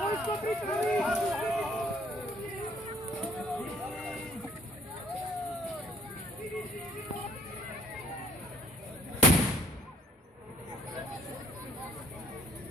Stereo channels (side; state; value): both; normal; correlation 0.59